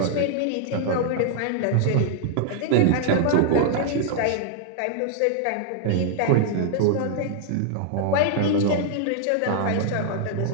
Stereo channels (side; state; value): both; different; correlation -0.01